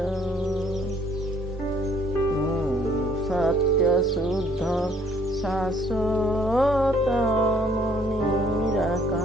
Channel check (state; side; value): normal; both; correlation 0.62